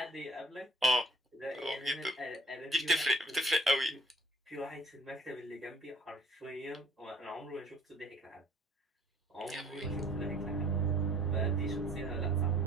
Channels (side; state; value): both; normal; correlation 0.56